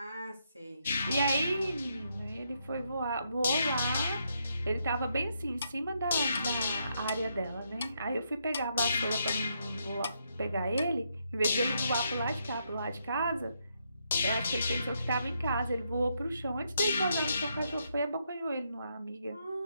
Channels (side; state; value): both; inverted; correlation -0.78